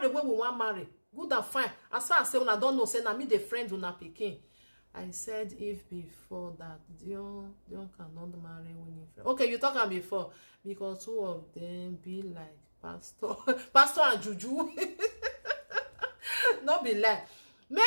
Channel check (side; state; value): both; inverted; correlation -1.00